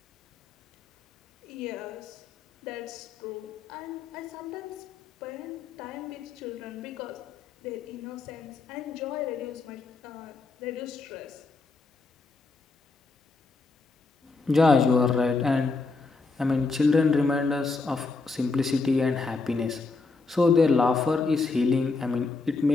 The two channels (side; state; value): right; quieter; 3.9 dB